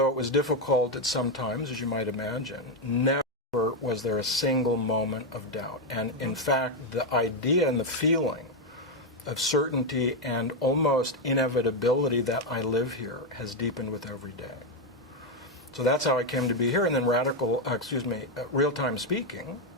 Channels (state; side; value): normal; both; correlation 0.05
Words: it was difficult at some times, as you might imagine, never was there a single moment of doubt. And in fact, the idea and the feeling of certainty and almost inevitability that I live here has deepened with every day. So that's how I came to be here. And then real-time speaking